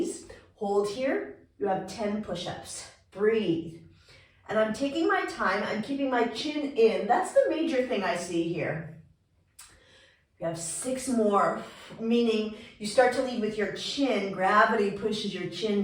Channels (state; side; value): identical; both; correlation 1.00